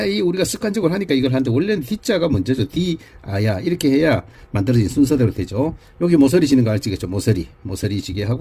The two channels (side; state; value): both; identical; correlation 1.00